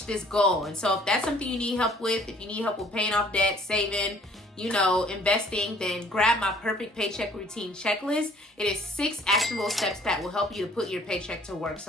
this goal. And so if that's something you need help with, if you need help with paying off debt, saving, you know, investing, then grab my perfect paycheck routine checklist. It is 6 actionable steps that will help you to put your paycheck to work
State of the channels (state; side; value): normal; both; correlation 0.57